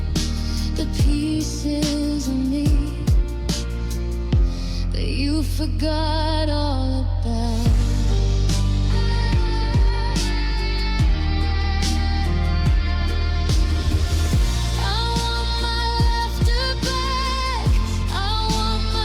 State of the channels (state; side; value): identical; both; correlation 1.00